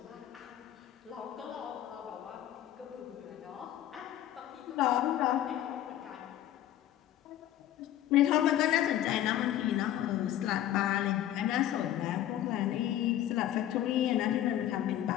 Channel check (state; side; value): quieter; right; 12.4 dB